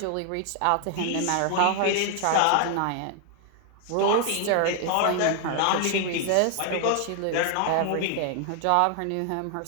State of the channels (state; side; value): different; both; correlation 0.00